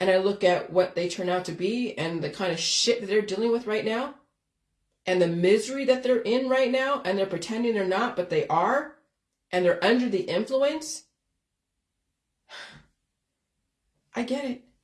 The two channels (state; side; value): identical; both; correlation 1.00